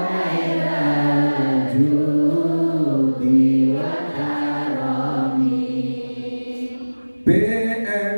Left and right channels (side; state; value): both; inverted; correlation -1.00